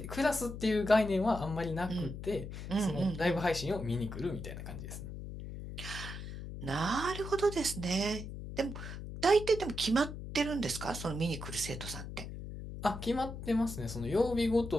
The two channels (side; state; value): left; noise; hum, 9 dB below the sound